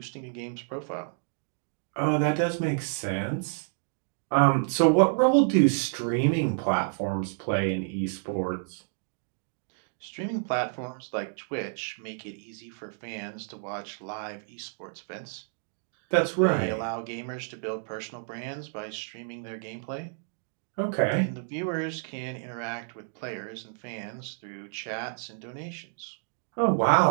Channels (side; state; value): left; silent; digital silence